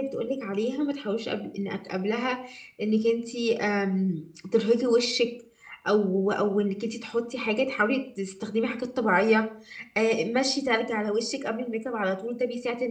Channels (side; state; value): both; identical; correlation 1.00